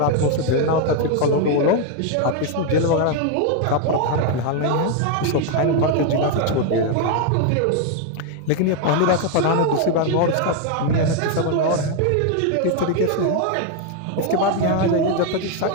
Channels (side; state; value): both; different; correlation 0.01